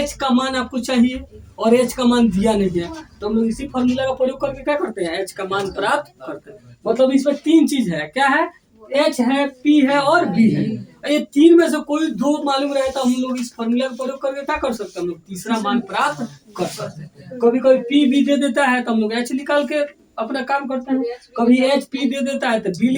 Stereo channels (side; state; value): both; identical; correlation 1.00